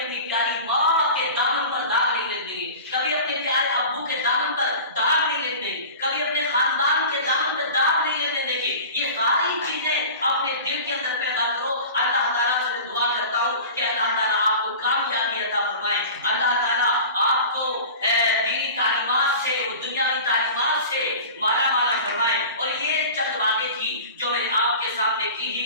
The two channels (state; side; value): inverted; both; correlation -0.37